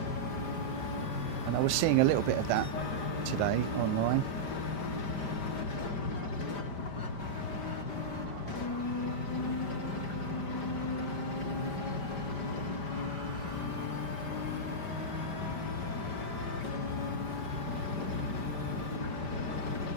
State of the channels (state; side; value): late; right; 5.1 ms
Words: And I was seeing a little bit of that today online.